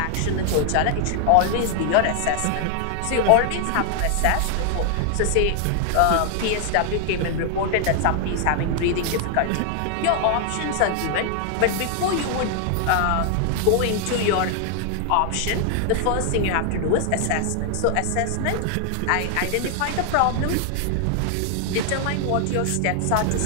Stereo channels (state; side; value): different; both; correlation 0.00